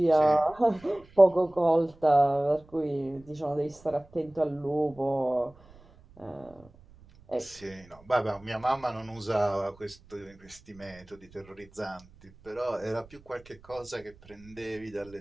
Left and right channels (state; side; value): noise; right; rumble, 25 dB below the sound